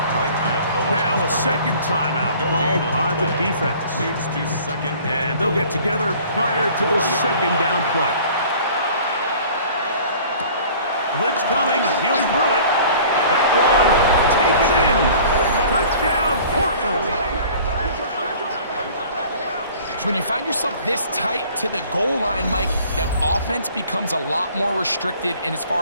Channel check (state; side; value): inverted; both; correlation -0.49